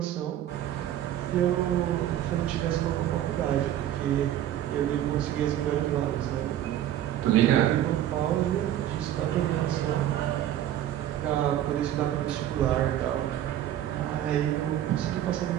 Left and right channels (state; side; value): quieter; left; 11.9 dB